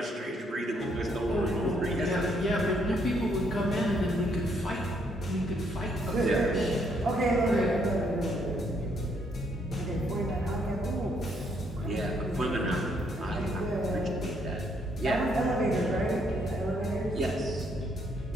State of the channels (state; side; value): normal; both; correlation 0.71